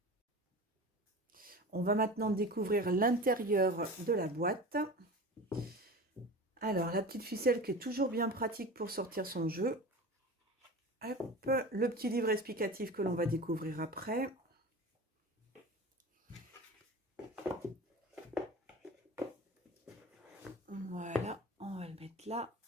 On va maintenant découvrir l'intérieur de la boîte. Alors, la petite ficelle qui est toujours bien pratique pour sortir son jeu. Hop, le petit livre explicatif que l'on va découvrir après. Voilà, on va le mettre là.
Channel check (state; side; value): normal; both; correlation 0.33